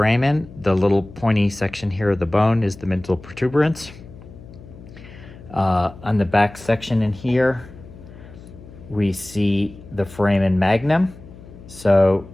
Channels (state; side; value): noise; left; hum, 18 dB below the sound